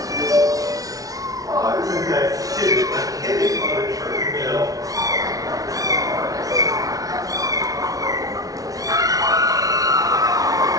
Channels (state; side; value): late; left; 0.18 ms